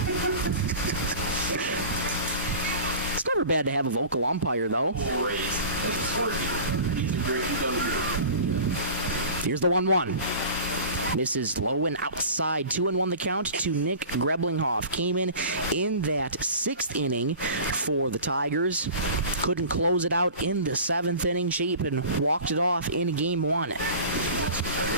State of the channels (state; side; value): inverted; both; correlation -0.38